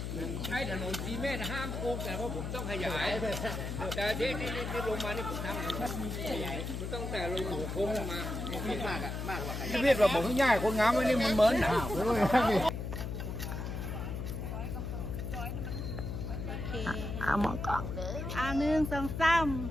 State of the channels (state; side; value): noise; left; hum, 4 dB below the sound